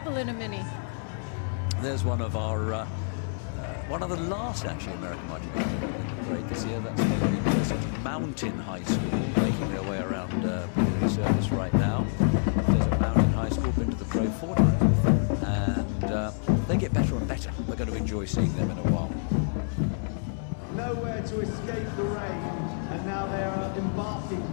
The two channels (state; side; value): silent; right; 59 dB below the other